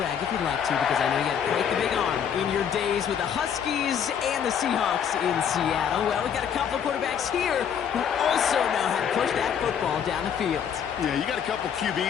if you'd like to, because I know you got quite the big arm in your days with the Huskies and the Seahawks in Seattle. Well, we've got a couple of quarterbacks here who also know how to push that football down the field. Yeah, you got a couple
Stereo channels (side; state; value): right; quieter; 8.1 dB